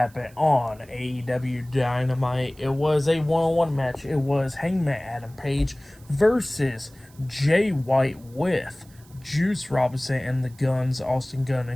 on AEW Dynamite, it was a one-on-one match. It was Hangman Adam Page versus Jay White with Juice Robinson and the Guns, Austin Gunn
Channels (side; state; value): right; noise; hiss, 27 dB below the sound